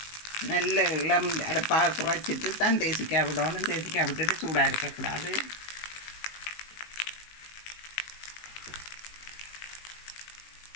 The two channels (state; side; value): late; right; 19 ms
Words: நல்ல இளம் அடுப்பாக குறைச்சிட்டு தான் தேசிக்காய் விடணும். தேசிக்காய் விட்டுட்டு சூடாக இருக்கக்கூடாது.